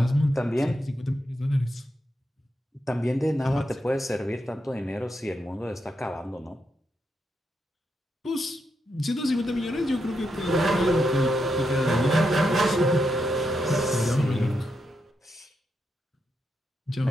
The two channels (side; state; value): both; normal; correlation 0.83